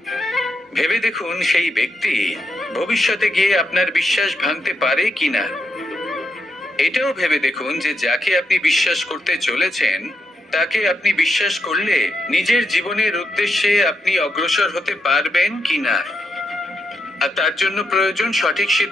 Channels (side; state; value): both; normal; correlation 0.83